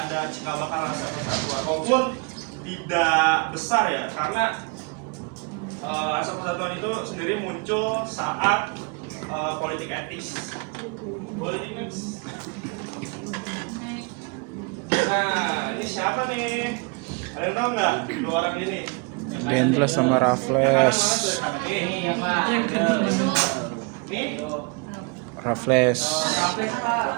cikal bakal rasa persatuan, walaupun tidak besar ya, karena rasa persatuan itu sendiri muncul saat politik etis. Nah, ini siapa nih? Ada yang tahu nggak? Dua orang ini. Dendles sama Raffles. Ini ya Pak. Ini Raffles.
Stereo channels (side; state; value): left; quieter; 31.6 dB